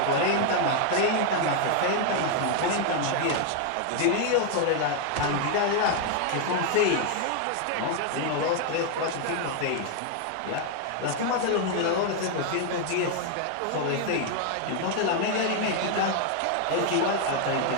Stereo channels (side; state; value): both; different; correlation 0.00